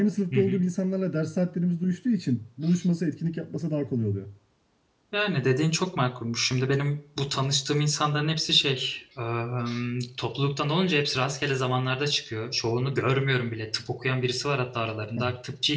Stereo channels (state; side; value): identical; both; correlation 1.00